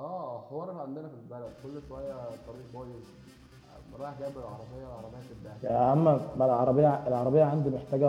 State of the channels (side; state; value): both; identical; correlation 1.00